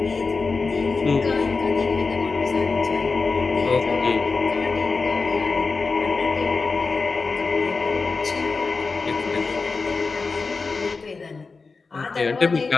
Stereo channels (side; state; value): right; quieter; 4.3 dB